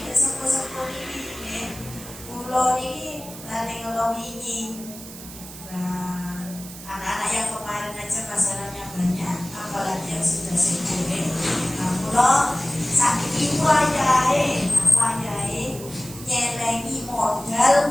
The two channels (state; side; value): noise; right; hiss, 14 dB below the sound